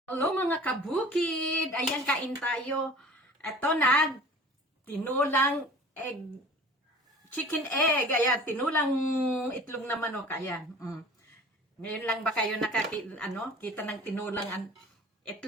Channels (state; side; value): normal; both; correlation 0.44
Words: Hello mga kabukid! Ayan, kain tayo. Ito na, tinulang egg, chicken egg. Ayan, tinulang itlog na manok. Ayan. Ngayon lang ba kayo kita ng tinulang